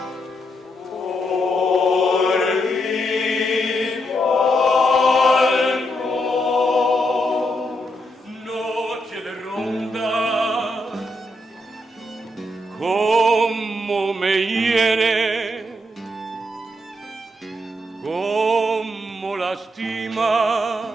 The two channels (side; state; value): both; normal; correlation 0.80